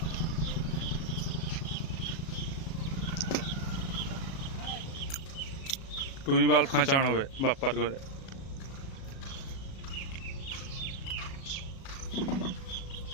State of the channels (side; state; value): right; late; 37 ms